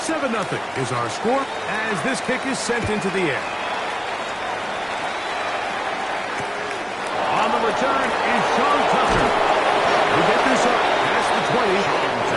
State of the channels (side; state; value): both; identical; correlation 1.00